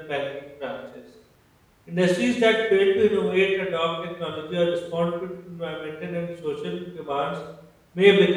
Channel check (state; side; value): identical; both; correlation 1.00